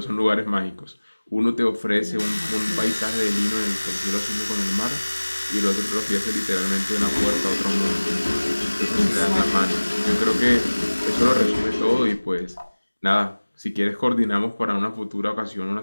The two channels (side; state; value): both; inverted; correlation -1.00